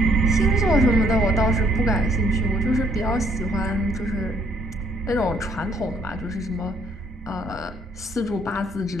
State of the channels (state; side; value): normal; both; correlation 0.66